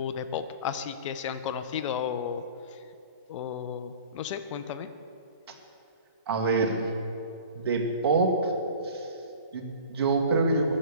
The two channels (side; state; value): both; inverted; correlation -0.41